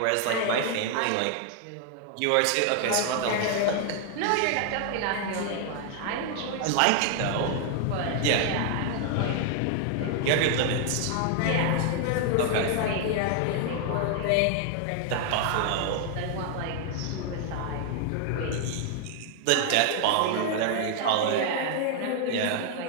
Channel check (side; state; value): both; different; correlation 0.00